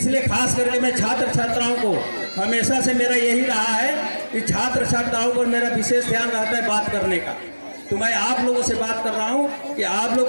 खास करके मैं छात्र छात्राओं को, हमेशा से मेरा यही रहा है कि छात्र छात्राओं पर मेरा विशेष ध्यान रहता है बात करने का। तो मैं आप लोगों से बात कर रहा हूँ कि आप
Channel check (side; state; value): both; inverted; correlation -1.00